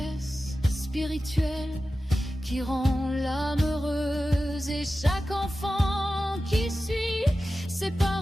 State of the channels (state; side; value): normal; both; correlation 0.94